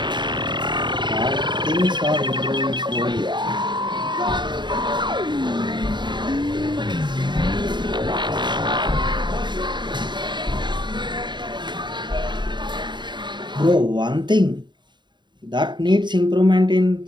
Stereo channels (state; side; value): late; left; 0.22 ms